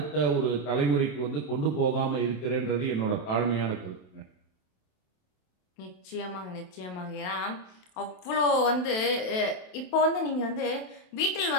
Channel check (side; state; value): right; late; 27 ms